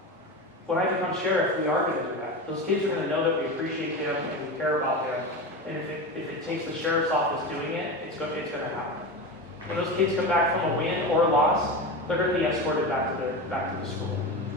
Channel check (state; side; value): normal; both; correlation 0.24